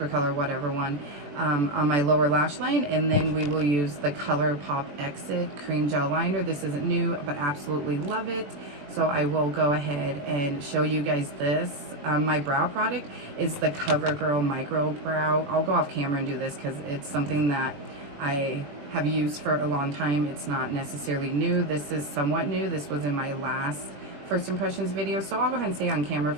color, whatever one, on my lower lash line, and then we will use the ColourPop Exit Cream Gel Liner. This isn't new, but absolutely love it. So I will go ahead and show you guys this. My brow product is the CoverGirl Micro Brow. I'll go off camera and do this because it's something that I have used for a long time. It's not necessarily new. This is somewhat new. This was in my last first impressions video, so I'll go ahead and stay on camera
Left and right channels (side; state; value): left; late; 21 ms